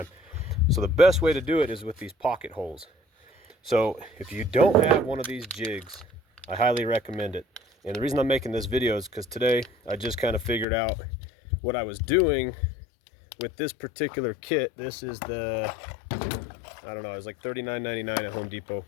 So the best way to do it is with these pocket holes. So if you don't have one of these jigs, I highly recommend it. And the reason I'm making this video is because today I just kind of figured out what I was doing with this particular kit. This is the, I don't know, it was like $39.99 at Home Depot.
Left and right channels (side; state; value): right; drops out; at 10.7 s